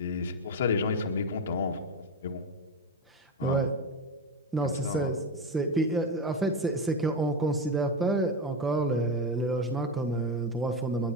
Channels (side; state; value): both; normal; correlation 0.15